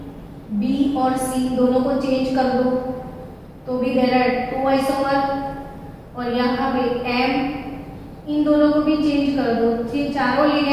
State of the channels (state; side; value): identical; both; correlation 1.00